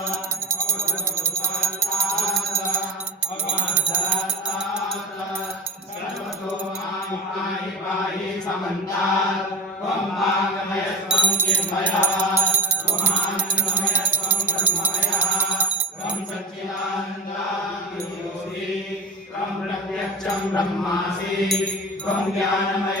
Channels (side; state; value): both; normal; correlation 0.31